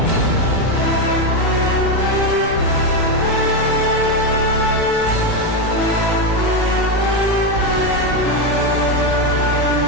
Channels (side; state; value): right; late; 19 ms